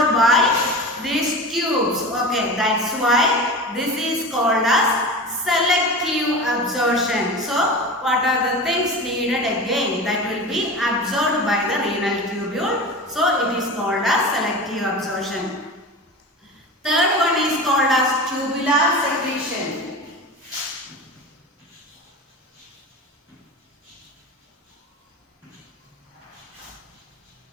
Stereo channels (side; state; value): both; normal; correlation 0.31